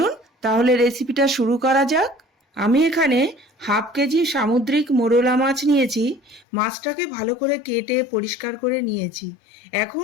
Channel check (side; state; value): right; drops out; at 6.5 s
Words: তাহলে রেসিপিটা শুরু করা যাক। আমি এখানে হাফ কেজি সামুদ্রিক মোরলা মাছ নিয়েছি। মাছটাকে ভালো করে কেটে পরিষ্কার করে নিয়েছি।